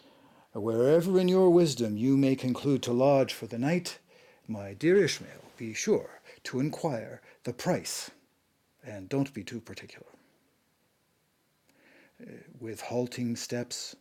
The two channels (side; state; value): both; identical; correlation 1.00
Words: Wherever in your wisdom you may conclude to lodge for the night, my dear Ishmael, be sure to inquire the price, and don't be too particular. With halting steps,